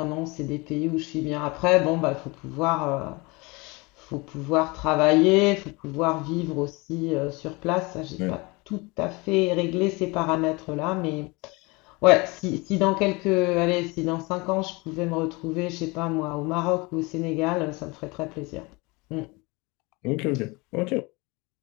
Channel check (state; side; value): quieter; right; 25.8 dB